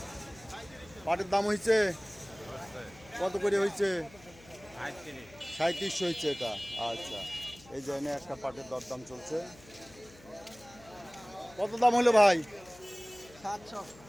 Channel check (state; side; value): noise; left; hum, 23 dB below the sound